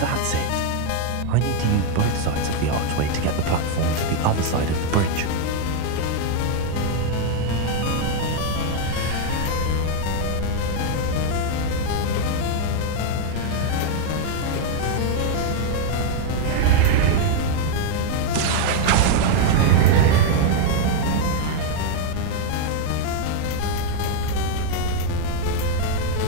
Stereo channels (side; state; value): both; different; correlation 0.00